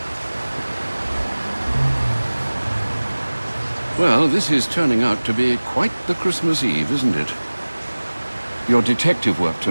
Well, this is turning out to be quite the Christmas Eve, isn't it? Your detective work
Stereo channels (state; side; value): inverted; both; correlation -1.00